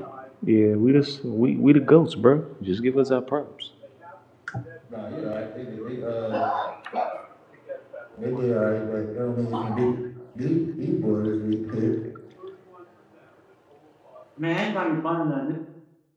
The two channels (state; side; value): identical; both; correlation 1.00